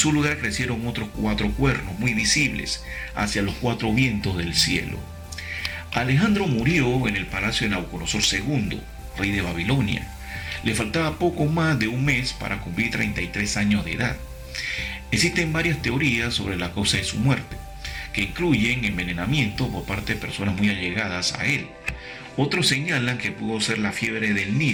lugar crecieron otros 4 cuernos muy visibles hacia los 4 vientos del cielo. Alejandro murió en el palacio de Nabucodonosor II, rey de Babilonia. Le faltaba poco más de un mes para cumplir 33 años de edad. Existen varias teorías sobre la causa de su muerte, que incluyen envenenamiento por parte de personas muy allegadas a él. Otros señalan que pudo ser la fiebre del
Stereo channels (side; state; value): both; identical; correlation 1.00